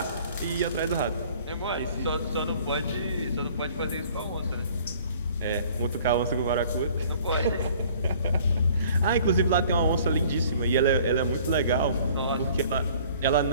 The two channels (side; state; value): both; inverted; correlation -0.53